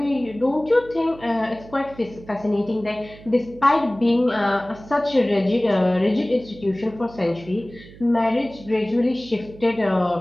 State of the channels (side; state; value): right; noise; hum, 19 dB below the sound